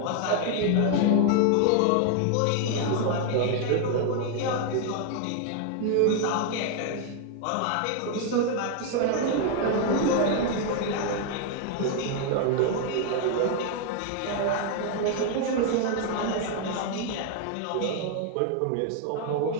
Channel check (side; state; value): both; different; correlation 0.00